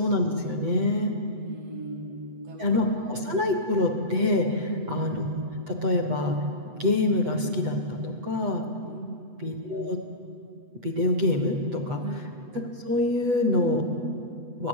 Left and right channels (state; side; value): late; left; 8.1 ms